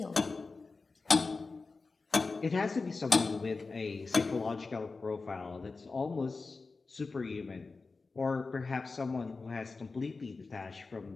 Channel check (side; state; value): right; quieter; 4.0 dB